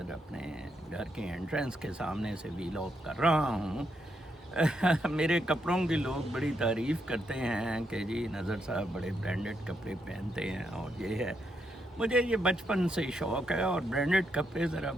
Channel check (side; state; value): both; normal; correlation 0.80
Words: अपने घर के एंट्रेंस के सामने से व्लॉग कर रहा हूँ। मेरे कपड़ों की लोग बड़ी तारीफ़ करते हैं कि जी नज़र साहब बड़े ब्रांडेड कपड़े पहनते हैं और ये है। मुझे ये बचपन से ही शौक़ है और ब्रांडेड कपड़े ज़रा